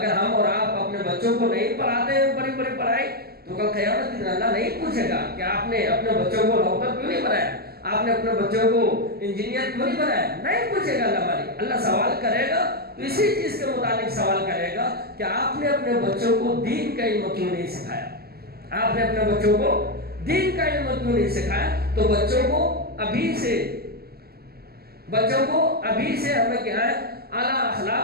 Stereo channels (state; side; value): late; left; 0.46 ms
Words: ہم اور آپ اپنے بچوں کو نہیں پڑھاتے ہیں بڑی بڑی پڑھائی تو کل قیامت کے دن اللہ نہیں پوچھے گا کہ آپ نے اپنے بچوں کو ڈاکٹر کیوں نہیں بنایا, آپ نے اپنے بچوں کو انجینئر کیوں نہیں بنایا, نہیں پوچھے گا اللہ مالک. اللہ سوال کرے گا تو اسی چیز کے متعلق سوال کرے گا کہ آپ نے اپنے بچوں کو دین کا علم کیوں نہیں سکھایا, آپ نے اپنے بچوں کو دین کا علم کیوں نہیں سکھایا. تو بچوں کو ابھی سے ہمیں کیا ہے, اعلیٰ